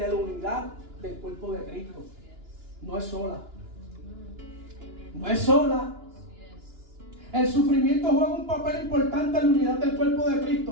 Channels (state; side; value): late; left; 2.9 ms